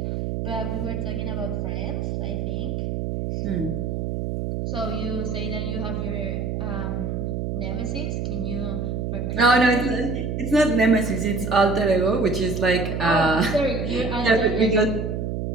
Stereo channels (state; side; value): noise; right; hum, 2 dB below the sound